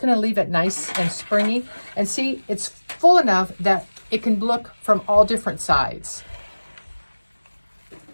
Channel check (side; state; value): both; inverted; correlation -1.00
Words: to leave it nice and springy. And see, it's full enough that it can look from all different sides.